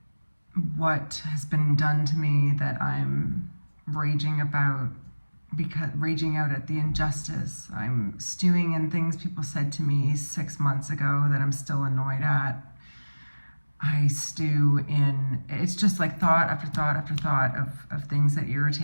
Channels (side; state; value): both; inverted; correlation -1.00